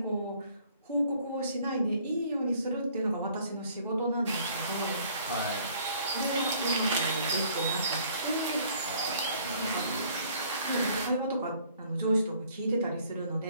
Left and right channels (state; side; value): inverted; both; correlation -0.58